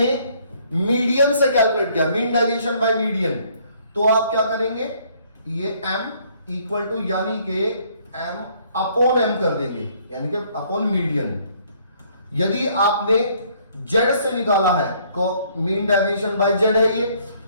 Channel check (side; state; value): both; inverted; correlation -0.63